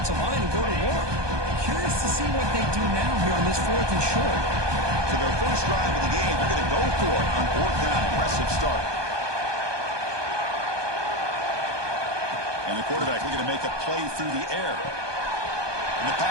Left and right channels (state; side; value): late; left; 1.2 ms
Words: line and go to work. Curious to see what they do now here on this 4th and short. So their first drive of the game, they're going to go for it on 4th down. Impressive start. And the quarterback looking to make a play through the air. And the